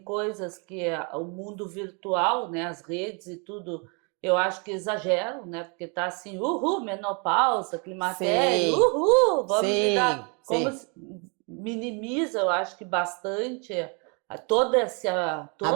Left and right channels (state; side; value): quieter; left; 34.8 dB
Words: que o mundo virtual, né? As redes e tudo, eu acho que exageram, né? Porque tá assim, uhul, menopausa, climatério, Sim, uhul, vamos sim, lidar. sim. Minimiza, eu acho que bastante A